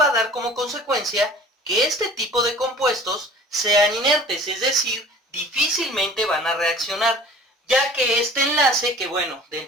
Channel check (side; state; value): both; normal; correlation 0.45